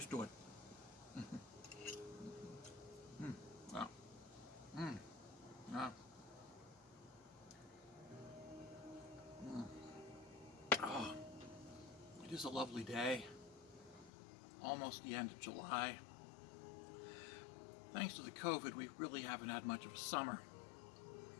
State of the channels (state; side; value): drops out; right; at 14.1 s